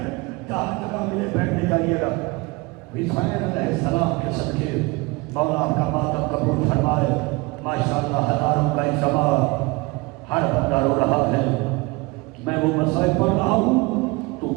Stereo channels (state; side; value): quieter; left; 24.8 dB